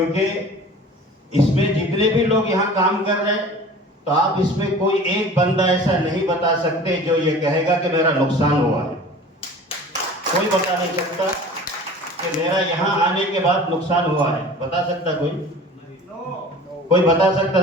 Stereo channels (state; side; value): normal; both; correlation 0.42